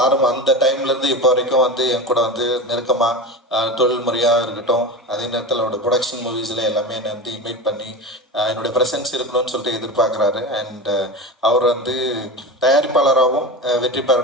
அந்த டைம்லேருந்து இப்போ வரைக்கும் வந்து என் கூட வந்து நெருக்கமாக தொழில் முறையாக இருக்கட்டும், அதே நேரத்தில் அவரோட ப்ரொடக்ஷன் மூவிஸில் எல்லாமே என்னை வந்து இன்வைட் பண்ணி என்னுடைய ப்ரெசன்ஸ் இருக்கணும்னு சொல்லிட்டு எதிர்பார்க்குறாரு. அண்ட் அவர் வந்து தயாரிப்பாளராகவும் வெற்றி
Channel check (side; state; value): both; normal; correlation 0.26